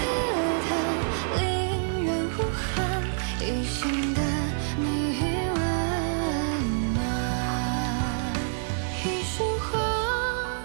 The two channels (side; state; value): left; silent; 60 dB below the other